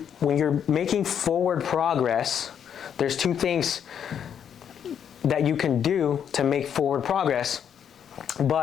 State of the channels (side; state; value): right; quieter; 8.5 dB